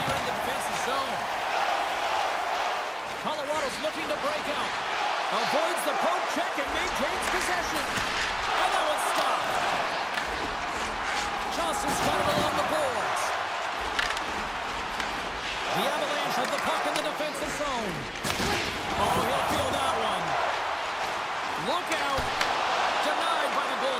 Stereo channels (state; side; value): identical; both; correlation 1.00